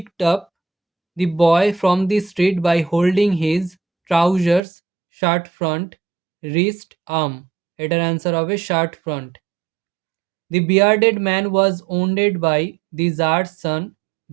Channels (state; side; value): drops out; left; at 4.6 s